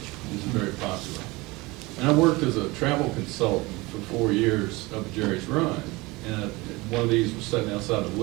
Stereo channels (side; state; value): left; quieter; 22.8 dB